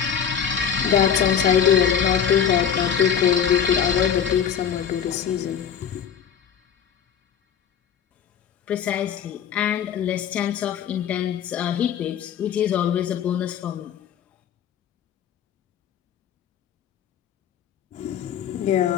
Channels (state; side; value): quieter; right; 8.2 dB